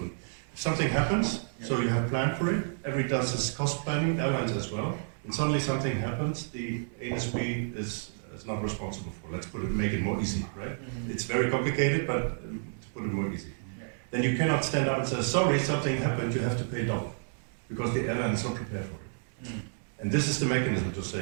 something happens, so you have planned for it, everybody does this cost planning, airlines as well, and suddenly something happens, the ASB is not responsible for. Let's make it more easy, right? It's very complicated, but to put it more easy. Then you cannot stand up and say, sorry, something happened, you have to pay double, because the airline is not prepared for it. And this is the mechanism to say,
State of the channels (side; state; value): left; silent; digital silence